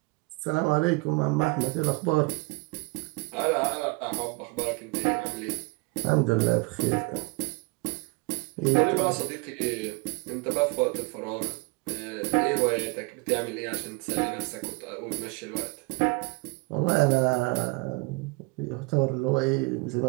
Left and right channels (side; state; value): left; quieter; 27.9 dB